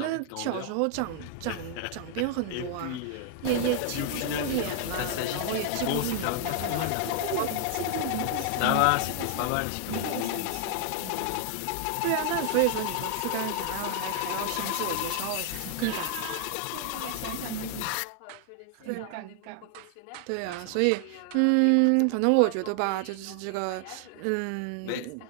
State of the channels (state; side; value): different; both; correlation 0.00